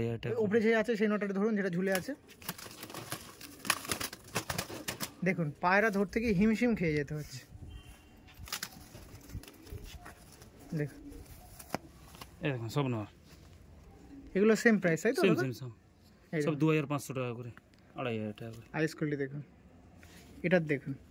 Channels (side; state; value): both; identical; correlation 1.00